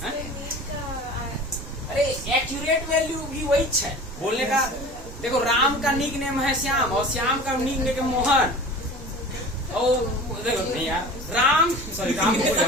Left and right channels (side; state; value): both; normal; correlation 0.38